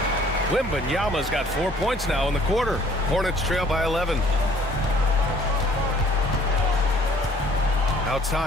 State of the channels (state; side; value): normal; both; correlation 0.57